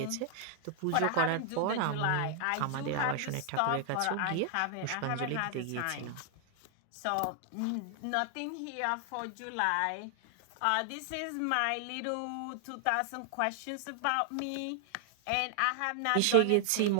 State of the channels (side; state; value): both; different; correlation 0.00